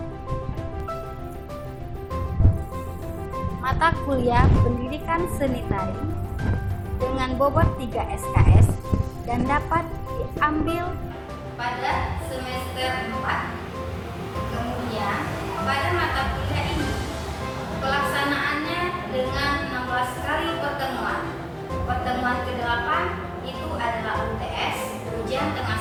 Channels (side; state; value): both; identical; correlation 1.00